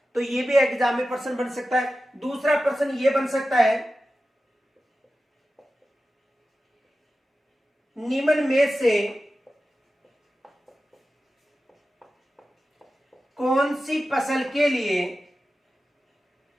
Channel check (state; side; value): normal; both; correlation 0.93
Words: तो ये भी एग्जाम में प्रश्न बन सकता है। दूसरा प्रश्न ये बन सकता है, निम्न में से कौन सी फसल के लिए